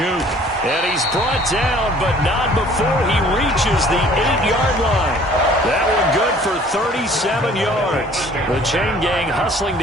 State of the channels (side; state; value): both; normal; correlation 0.54